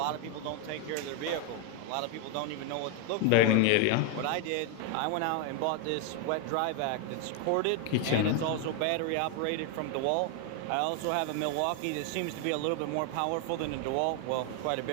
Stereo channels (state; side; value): different; both; correlation 0.01